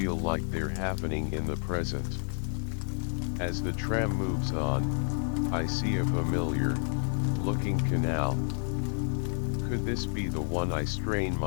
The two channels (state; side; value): silent; right; 58 dB below the other